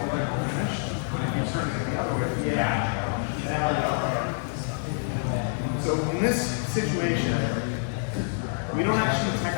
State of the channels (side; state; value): right; silent; 59 dB below the other